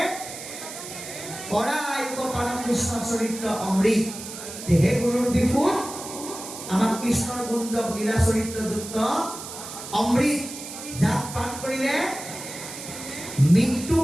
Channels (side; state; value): right; noise; hiss, 11 dB below the sound